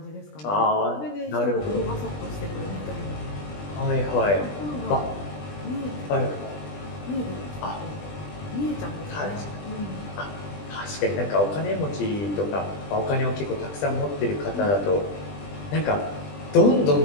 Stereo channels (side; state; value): right; late; 20 ms